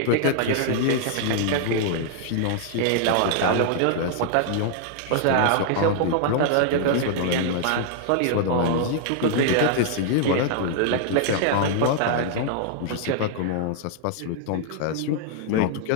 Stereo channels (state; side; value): different; both; correlation -0.01